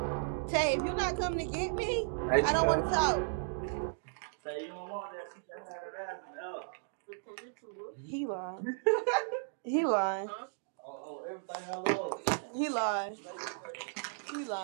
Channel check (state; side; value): silent; left; digital silence